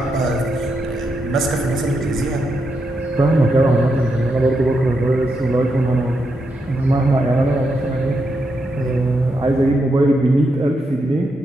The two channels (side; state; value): both; normal; correlation 0.83